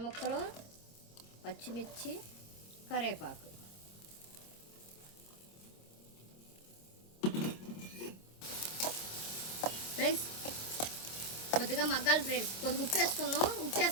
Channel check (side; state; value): right; late; 26 ms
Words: ముక్కలు, పచ్చిమిర్చి, కరివేపాకు. ఫ్రెండ్స్ కొద్దిగా మగ్గాలి ఫ్రెండ్స్. కొద్దిగా ఉప్పు వేసుకున్నాం. ఉప్పు